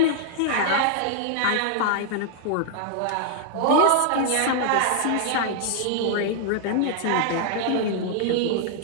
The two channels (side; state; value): both; different; correlation -0.01